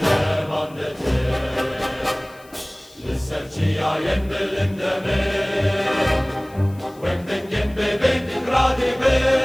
mandete Lisserciya yendelinde me Wemdengen bebek ikradi be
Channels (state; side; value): noise; left; hiss, 26 dB below the sound